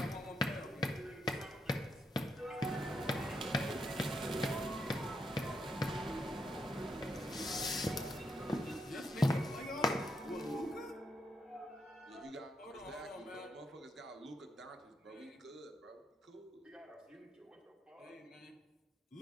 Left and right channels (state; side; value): normal; both; correlation 0.80